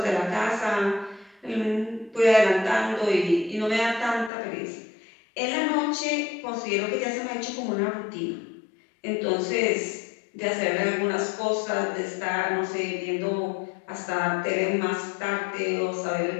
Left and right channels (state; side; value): drops out; right; at 4.3 s